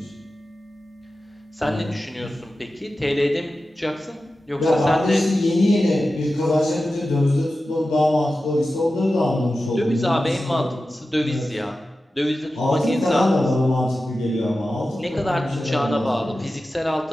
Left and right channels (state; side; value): normal; both; correlation 0.93